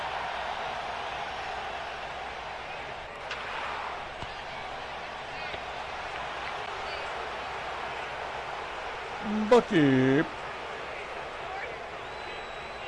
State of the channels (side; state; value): both; identical; correlation 1.00